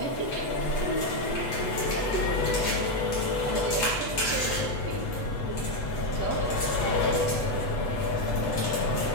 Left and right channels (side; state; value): right; late; 8.1 ms